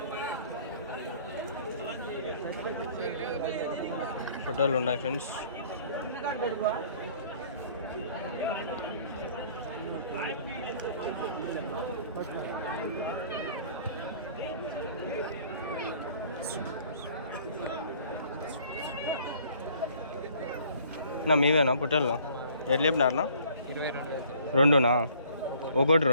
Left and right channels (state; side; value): inverted; both; correlation -0.55